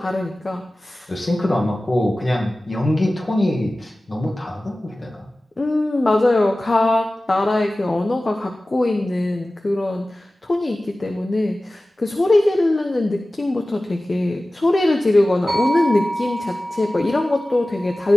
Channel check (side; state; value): both; normal; correlation 0.97